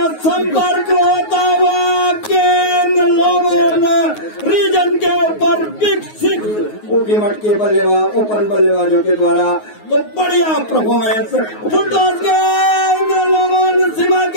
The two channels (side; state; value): right; late; 9.5 ms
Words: संपर्क होता हुआ गेंद रीजन के ऊपर बिग 6 ऊटी मट के बल्लेबाज ओपन बल्लेबाजों के द्वारा। तो बढ़िया परफॉर्मेंस, फुटबॉल गेंद लोगों सीमा